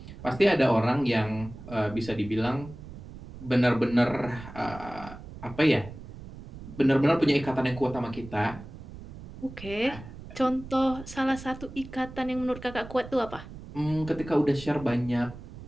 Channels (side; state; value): right; noise; rumble, 14 dB below the sound